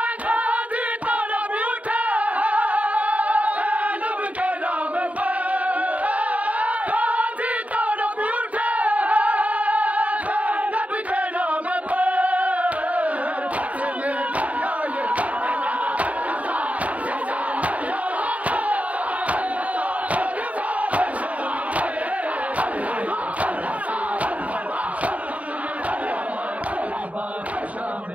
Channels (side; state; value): left; late; 0.068 ms